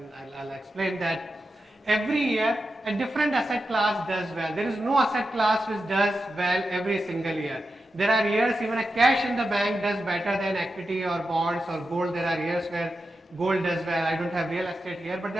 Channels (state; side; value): normal; both; correlation 0.90